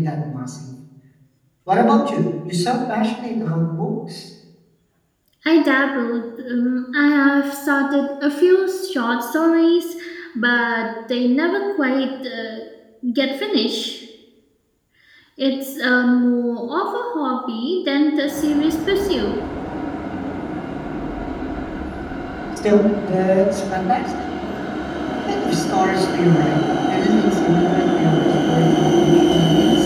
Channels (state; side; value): identical; both; correlation 1.00